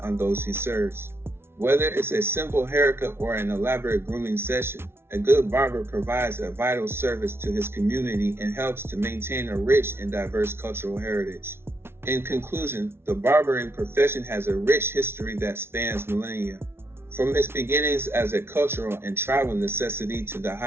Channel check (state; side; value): late; left; 0.12 ms